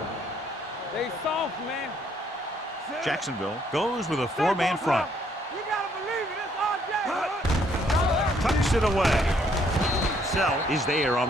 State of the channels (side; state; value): both; normal; correlation 0.68